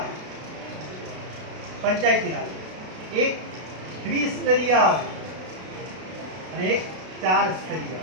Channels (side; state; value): left; late; 32 ms